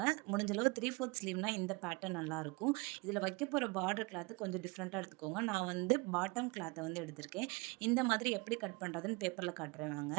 முடிஞ்ச அளவு 3/4 ஸ்லீவ்னா இந்த பேட்டர்ன் நல்லாயிருக்கும். இதில வைக்க போற பார்டர் கிளாத் கொஞ்சம் டிஃப்ரெண்ட்டா எடுத்துக்கோங்க. நான் வந்து பாட்டம் கிளாத்த வந்து எடுத்திருக்கேன். இந்த மாதிரி எப்படி கட் பண்றதுன்னு பேப்பர்ல காட்டுறேன்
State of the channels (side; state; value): left; quieter; 27.5 dB